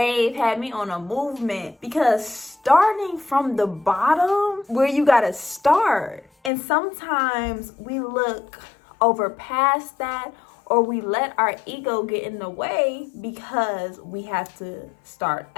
had me on a movement, because starting from the bottom, where you gotta start. And sometimes we look over past that, or we let our ego get in the way because we have to start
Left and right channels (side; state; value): right; drops out; at 6.5 s